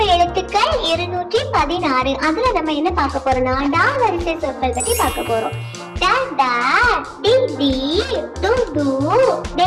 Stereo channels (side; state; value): both; identical; correlation 1.00